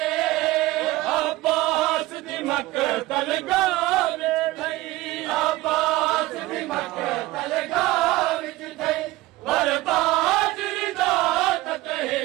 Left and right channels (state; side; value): quieter; left; 18.3 dB